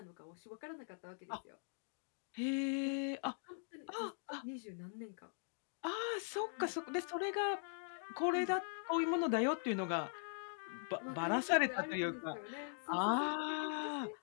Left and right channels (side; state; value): right; silent; digital silence